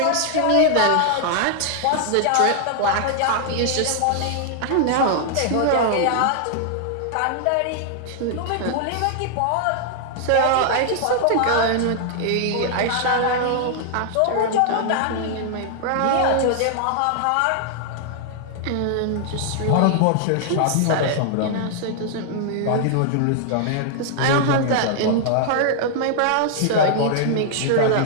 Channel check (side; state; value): both; different; correlation -0.01